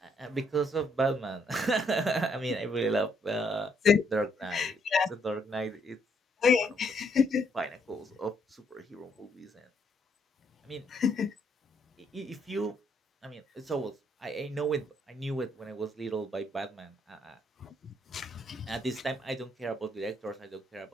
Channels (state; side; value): normal; both; correlation 0.71